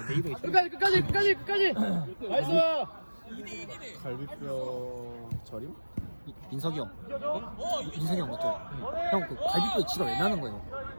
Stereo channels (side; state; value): both; inverted; correlation -1.00